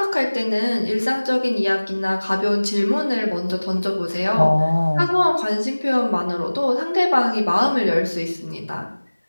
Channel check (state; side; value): inverted; both; correlation -1.00